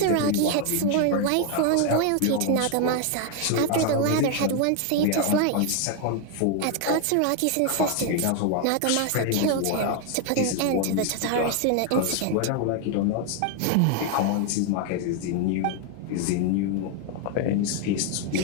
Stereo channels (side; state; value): both; different; correlation 0.01